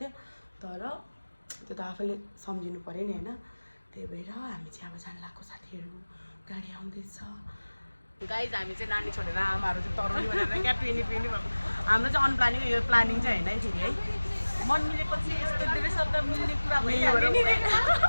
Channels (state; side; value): inverted; both; correlation -1.00